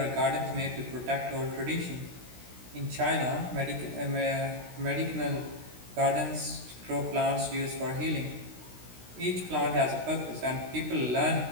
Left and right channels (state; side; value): late; left; 16 ms